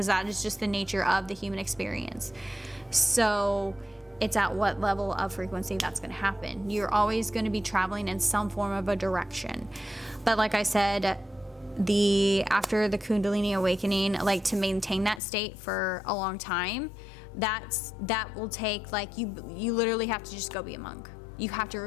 that is just the nature of the human experience. So it's at what level of frequency that's going to happen. You're always going to be traveling in some form of a direction. But like I said, after the Kundalini awakening, like, to maintain that state for a long time, that will take, like, you literally have to just go be a monk. You have to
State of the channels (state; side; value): drops out; right; at 15.2 s